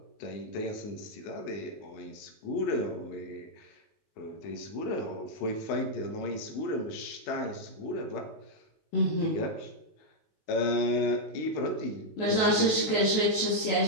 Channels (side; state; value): right; late; 19 ms